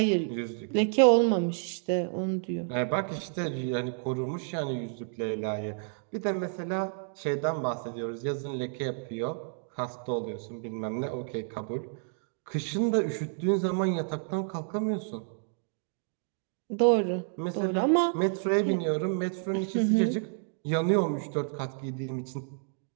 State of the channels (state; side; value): silent; left; digital silence